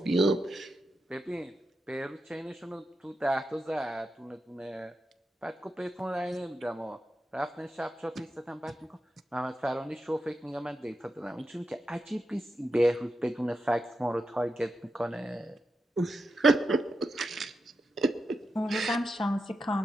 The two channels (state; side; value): normal; both; correlation 0.88